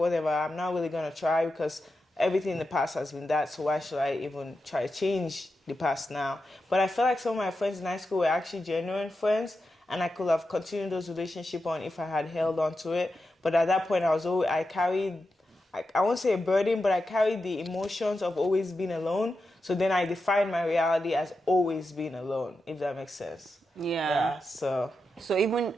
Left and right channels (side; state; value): both; normal; correlation 0.89